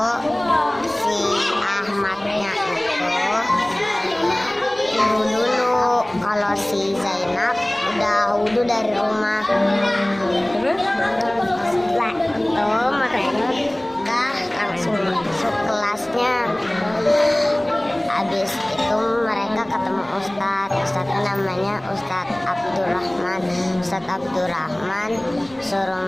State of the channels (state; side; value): noise; right; hum, 30 dB below the sound